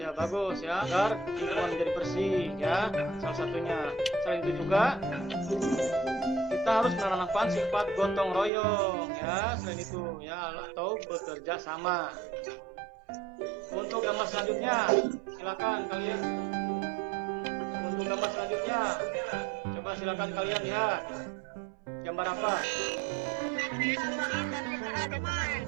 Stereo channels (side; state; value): left; drops out; at 8.5 s